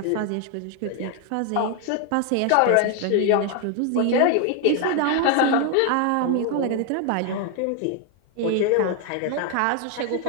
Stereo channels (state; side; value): different; both; correlation 0.01